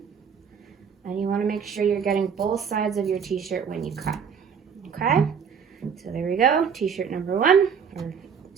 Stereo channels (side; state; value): left; quieter; 6.8 dB